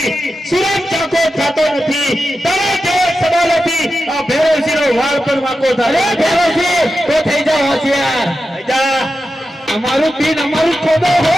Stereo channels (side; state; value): both; normal; correlation 0.90